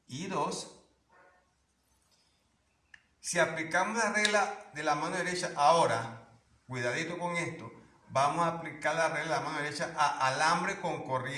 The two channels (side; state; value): both; identical; correlation 1.00